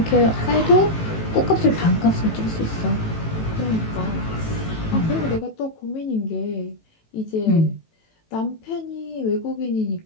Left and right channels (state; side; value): late; right; 18 ms